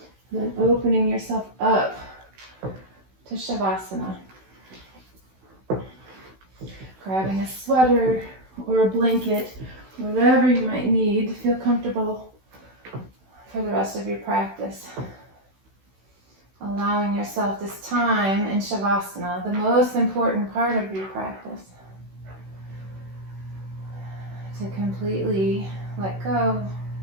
And then opening yourself up to Shavasana. Grabbing a sweater or a blanket, whatever you might need to feel comfortable for the rest of your practice. Allowing yourself this time in Shavasana, the most important part of your practice, to completely let go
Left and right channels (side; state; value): left; late; 16 ms